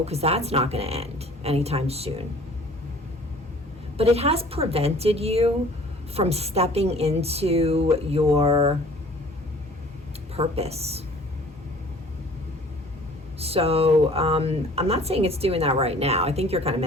because that's not going to end anytime soon. But it has prevented you from stepping into your purpose. So I'm not saying it's doing that right now. I think you're kind of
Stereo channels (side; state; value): both; normal; correlation 0.50